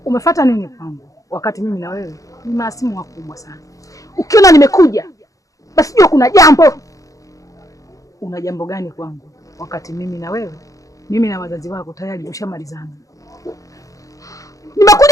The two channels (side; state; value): right; late; 0.16 ms